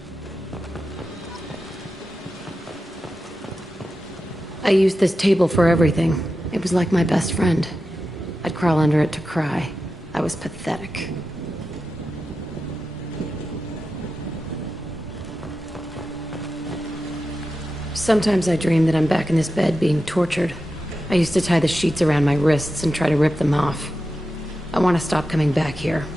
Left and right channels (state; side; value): normal; both; correlation 0.91